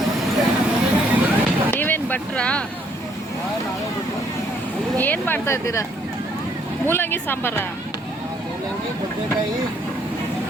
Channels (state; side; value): normal; both; correlation 0.67